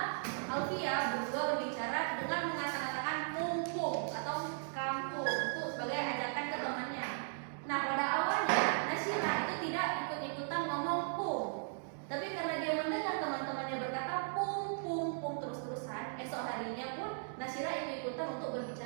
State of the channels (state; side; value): silent; left; digital silence